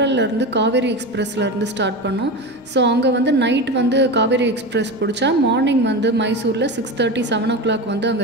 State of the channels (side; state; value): both; normal; correlation 0.24